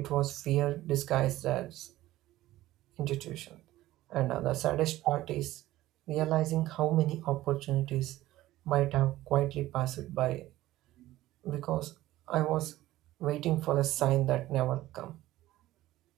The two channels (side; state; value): left; quieter; 15.8 dB